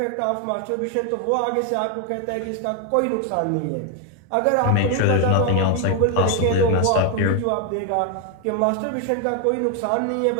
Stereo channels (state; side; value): different; both; correlation 0.01